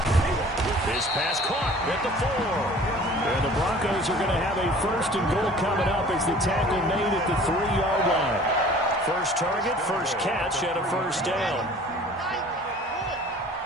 His pass caught at the 4. And the Broncos are going to have a first and goal coming up as the tackle made at the 3-yard line. First target, first catch, and a first down.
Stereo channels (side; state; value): both; normal; correlation 0.48